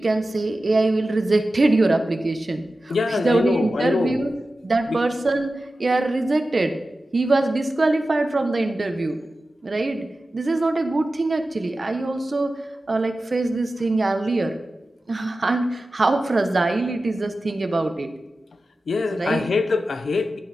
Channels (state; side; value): normal; both; correlation 0.94